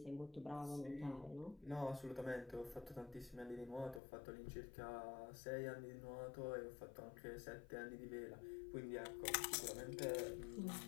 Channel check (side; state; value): right; drops out; at 4.0 s